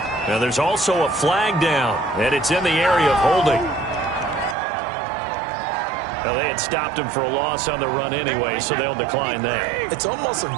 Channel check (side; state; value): left; drops out; at 4.5 s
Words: Now there's also a flag down, and it's in the area of holding. Now they had stopped him for a loss on the run anyway, so they'll decline that. It's almost